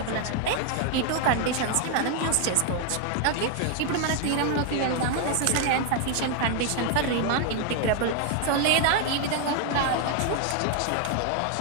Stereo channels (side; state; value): both; different; correlation 0.00